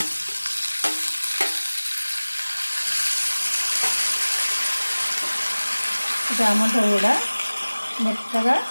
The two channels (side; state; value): both; inverted; correlation -1.00